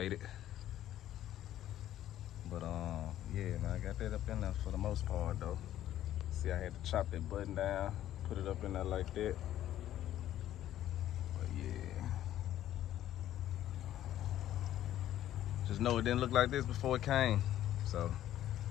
But yeah, man, I got that up in there for the most part though. See, I had to chop that button down, put it up in there like that. But yeah, just know it didn't look like this before it came. So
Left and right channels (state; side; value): quieter; right; 12.4 dB